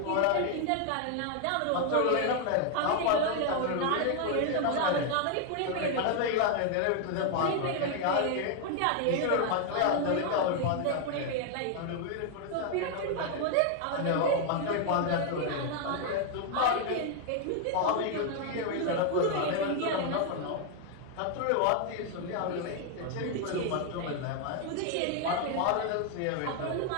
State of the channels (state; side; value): different; both; correlation 0.00